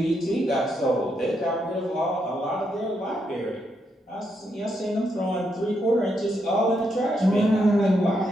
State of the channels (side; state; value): both; normal; correlation 0.79